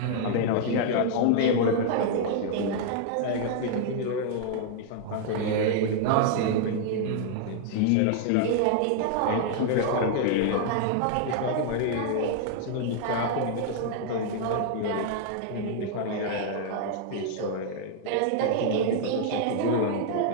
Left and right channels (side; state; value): both; different; correlation 0.00